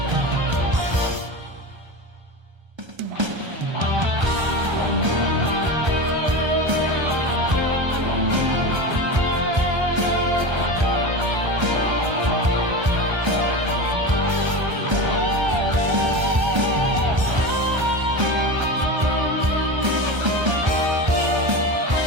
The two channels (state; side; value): late; left; 1.3 ms